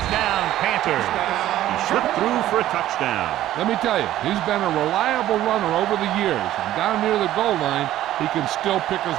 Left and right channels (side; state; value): left; quieter; 13.5 dB